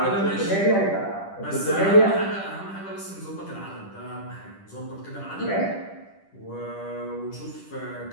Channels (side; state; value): right; late; 10 ms